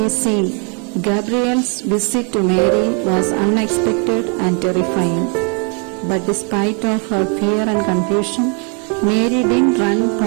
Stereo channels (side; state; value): left; quieter; 37.9 dB